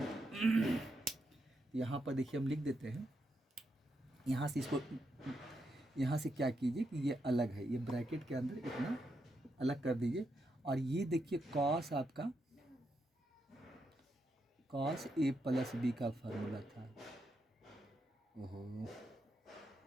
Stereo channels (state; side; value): normal; both; correlation 0.82